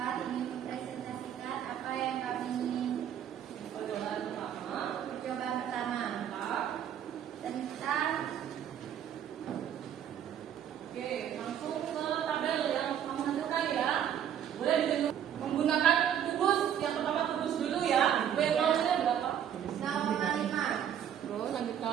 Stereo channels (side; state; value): left; quieter; 9.6 dB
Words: ingin mempresentasikan apa yang kami ingin. Percobaan pertama. Percobaan pertama tentang Oke, langsung ke tabel yang kamu hasilkan ya. Boleh ditunjuk menggunakan kubus. Yang pertama kubus dulu ya. W0-nya berapa? 0,5. Terus